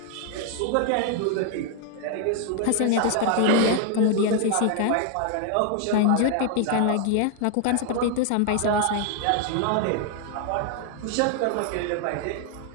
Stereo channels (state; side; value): different; both; correlation 0.00